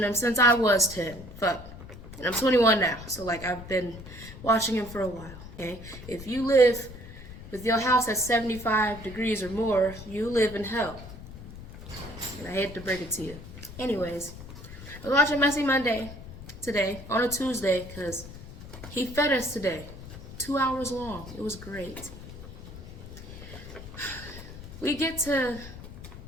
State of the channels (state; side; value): noise; left; rumble, 14 dB below the sound